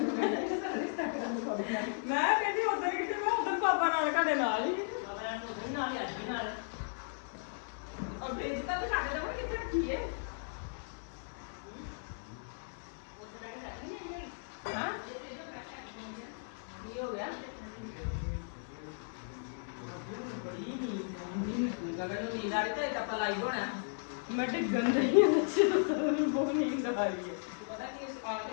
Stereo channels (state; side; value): silent; right; 54 dB below the other